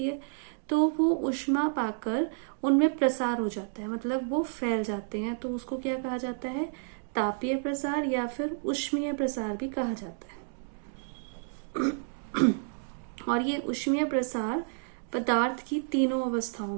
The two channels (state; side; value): silent; left; digital silence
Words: है, तो वो ऊष्मा पाकर उनमें प्रसार हो जाता है, मतलब वो फैल जाते हैं। तो उसको क्या कहा जाता है? तापीय प्रसार या फिर ऊष्मीय प्रसार भी कहा जाता है। और ये ऊष्मीय प्रसार पदार्थ की तीनों अवस्थाओं